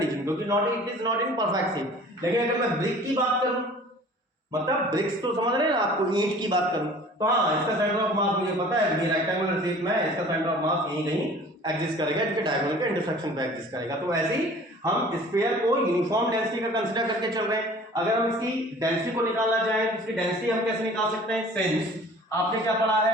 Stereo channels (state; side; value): normal; both; correlation 0.47